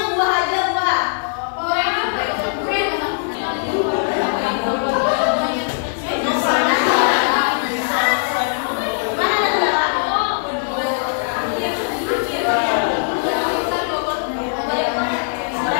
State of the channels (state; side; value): silent; right; digital silence